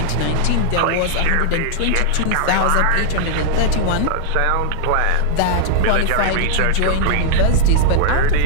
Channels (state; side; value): different; both; correlation 0.00